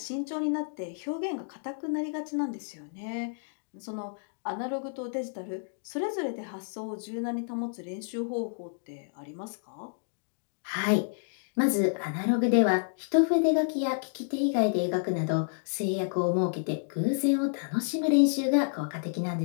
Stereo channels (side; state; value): right; silent; digital silence